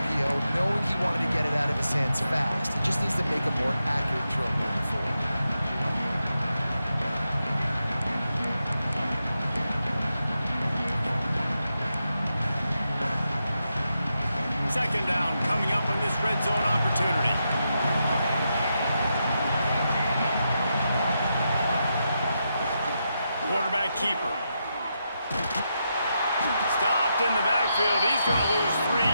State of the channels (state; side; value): inverted; both; correlation -0.85